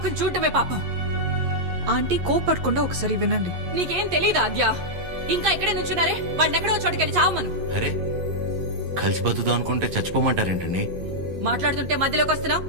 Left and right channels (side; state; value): left; late; 11 ms